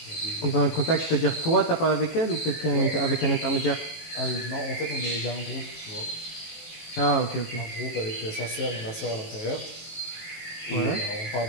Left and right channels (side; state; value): right; late; 19 ms